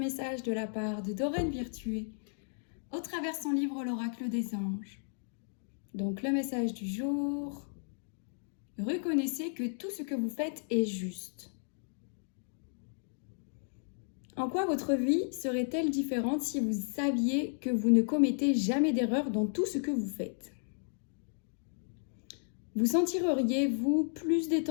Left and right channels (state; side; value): silent; right; digital silence